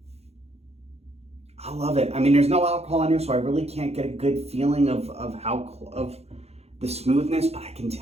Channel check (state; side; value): late; left; 0.30 ms